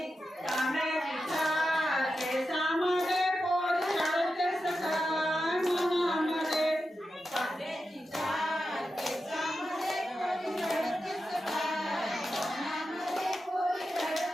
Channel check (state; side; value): normal; both; correlation 0.90